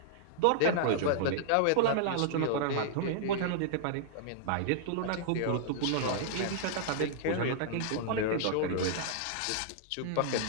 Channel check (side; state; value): both; different; correlation -0.01